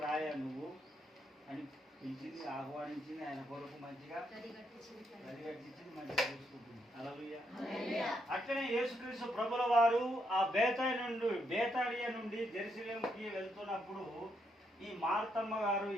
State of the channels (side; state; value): both; normal; correlation 0.77